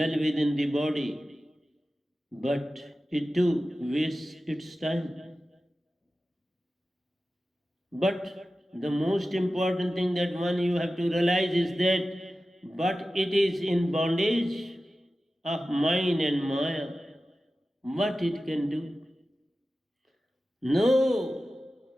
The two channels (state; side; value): normal; both; correlation 0.94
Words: within the body, but it too wastes its time. But the most important thing that one you have to realize is that but it is in bondage of mind and maya. What it can do? No